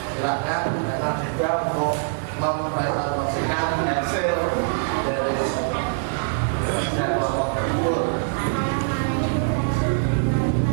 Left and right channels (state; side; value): silent; left; 63 dB below the other